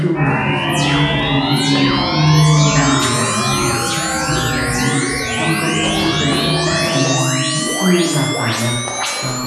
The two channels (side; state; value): both; identical; correlation 1.00